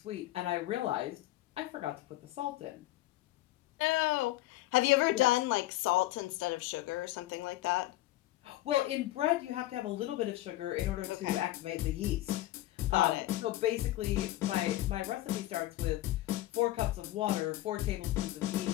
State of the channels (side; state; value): right; quieter; 16.2 dB